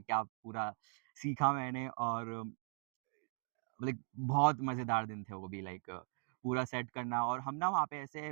पूरा सीखा मैंने, और लाइक बहुत मज़ेदार दिन थे वो भी, लाइक पूरा सेट करना। और हम ना वहाँ पे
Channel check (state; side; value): silent; left; 51 dB below the other